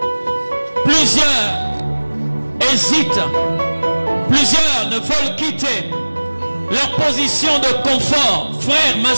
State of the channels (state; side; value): inverted; both; correlation -1.00